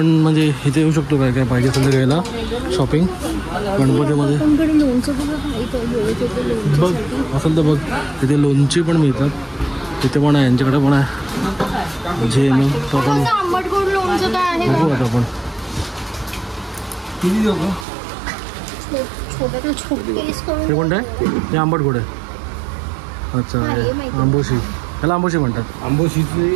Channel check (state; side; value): drops out; left; at 17.9 s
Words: म्हणजे इथे येऊ शकतो काय काय पाहिजे असेल तर घ्यायला शॉपिंग गणपतीमध्ये. बघ असेल तर बघ इथे लोणची पण मिळतात, इथे पण आहे, यांच्याकडे पण आहे जे मग तो आपण बघू आता आपण. हे कोणतं आहे? हे आंबट गोड आहे. अच्छा आंबोशी, त्याला आंबोशी म्हणतात. आंबोशीची